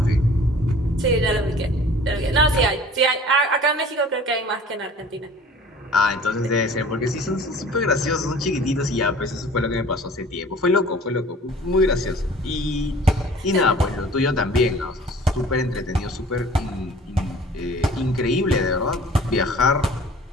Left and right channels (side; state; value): both; normal; correlation 0.48